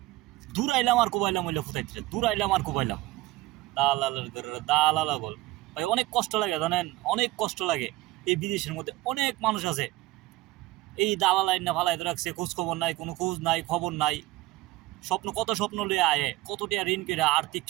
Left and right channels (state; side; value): quieter; left; 18.7 dB